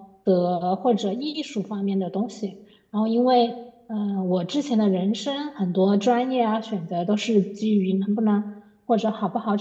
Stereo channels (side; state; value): both; identical; correlation 1.00